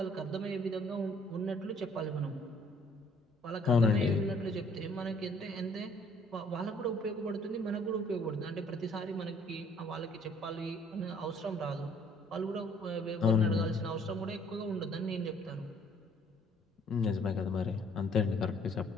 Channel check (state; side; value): normal; both; correlation 0.60